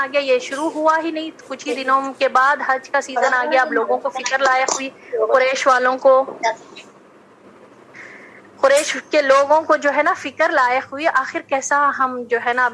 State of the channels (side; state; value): both; identical; correlation 1.00